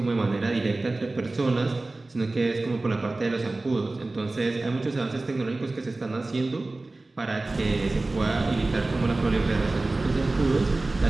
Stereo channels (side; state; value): left; quieter; 3.1 dB